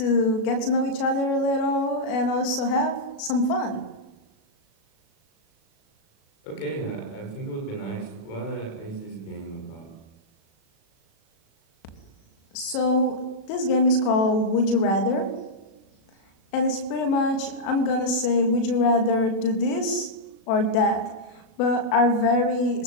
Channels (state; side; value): late; right; 36 ms